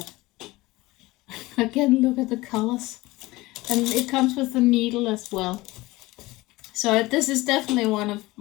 Again, look at the colors. And it comes with the needle as well. So this is definitely one of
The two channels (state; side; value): quieter; right; 20.1 dB